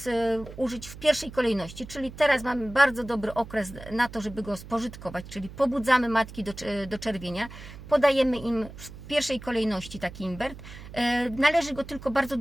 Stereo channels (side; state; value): right; noise; hum, 14 dB below the sound